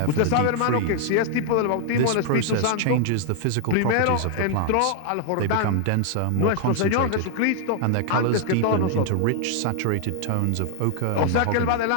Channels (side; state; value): both; different; correlation 0.00